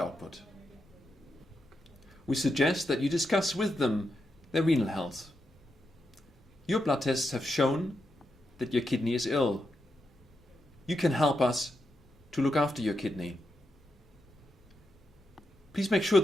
We suggest that you discuss with them their renal health. Your blood tests have shown that your kidney is ill. You can help us to look after your kidney. Please make sure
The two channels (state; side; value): normal; both; correlation 0.85